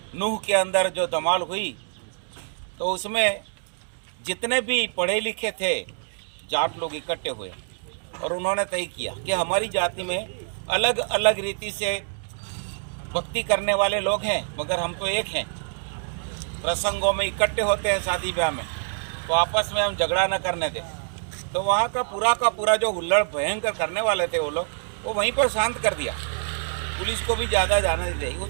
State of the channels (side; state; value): left; silent; digital silence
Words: नूह के अंदर जो धमाल हुई, तो उसमें जितने भी पढ़े लिखे थे जाट लोग इकट्ठे हुए, और उन्होंने तय किया कि हमारी जाति में अलग अलग रीति से भक्ति करने वाले लोग हैं, मगर हम तो एक हैं। प्रसंगों में इकट्ठे होते हैं, शादी ब्याह में, तो आपस में हम झगड़ा न करने दें। तो वहाँ का पूरा जो हुल्लड़ भयंकर करने वाले थे वो लोग, वो वहीं पर शांत कर दिया, पुलिस को भी ज़्यादा जाने दी।